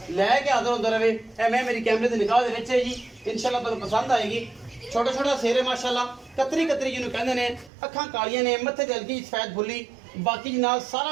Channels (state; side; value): drops out; left; at 7.7 s